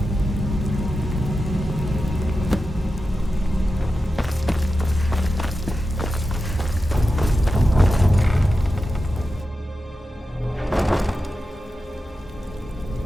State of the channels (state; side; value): normal; both; correlation 0.91